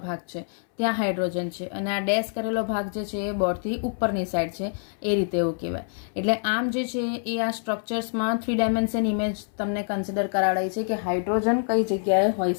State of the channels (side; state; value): right; silent; 61 dB below the other